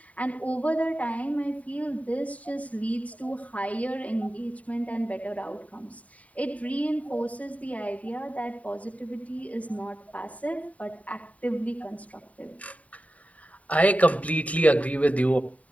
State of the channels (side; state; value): right; late; 0.069 ms